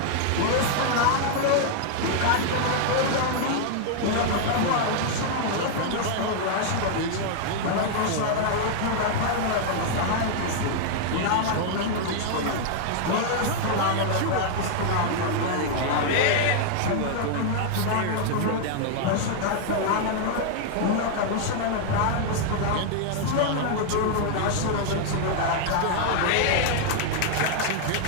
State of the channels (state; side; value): different; both; correlation 0.00